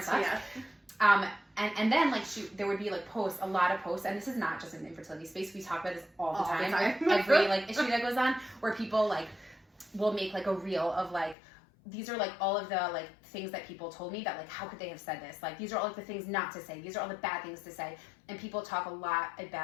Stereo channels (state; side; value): drops out; right; at 11.4 s